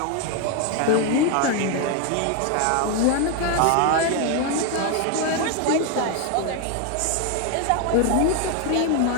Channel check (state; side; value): different; both; correlation 0.01